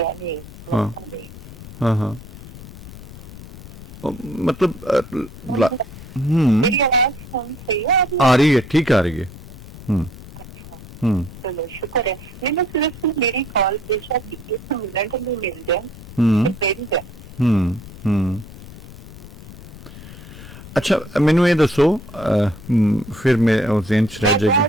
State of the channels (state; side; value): noise; left; rumble, 15 dB below the sound